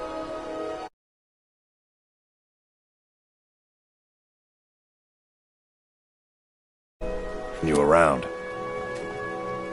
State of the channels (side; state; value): both; identical; correlation 1.00